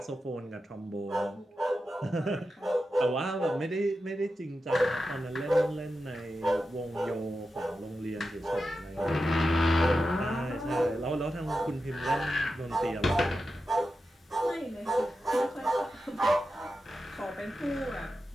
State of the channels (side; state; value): both; normal; correlation 0.91